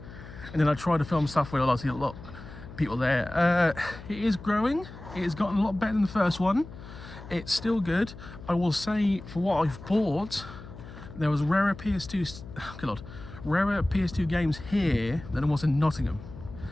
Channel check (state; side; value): noise; left; hum, 15 dB below the sound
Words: And then I tried to film stuff where I see a lot of people there. It is growing. It has gotten a lot better than the first one. It's still good. I will say, for what I've bought, there was rarer PS2 games here than it was in Nottingham.